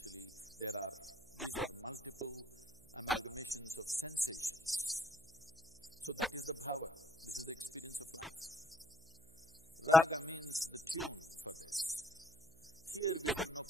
these are multiple amalgamations of sensations. So that is the bhava, this is the experience of life. Raga means the tune for this. Here we have no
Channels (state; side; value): noise; right; hum, 24 dB below the sound